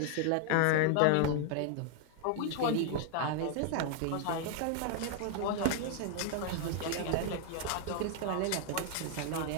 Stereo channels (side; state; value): both; different; correlation 0.00